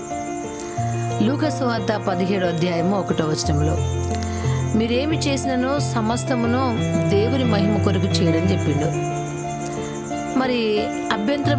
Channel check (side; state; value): both; identical; correlation 1.00